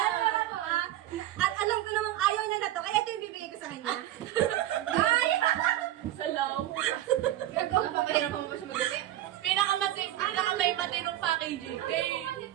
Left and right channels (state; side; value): quieter; left; 13.7 dB